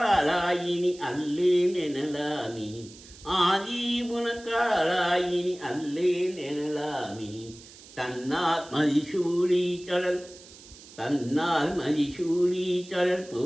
அல்லேன் எனலாமி. ஆதி உனக்காலாயினி அல்லேன் எனலாமி. தன்னார் மதிசூடி கடல் தன்னால் மதிசூடி கடல்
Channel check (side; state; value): right; noise; hiss, 20 dB below the sound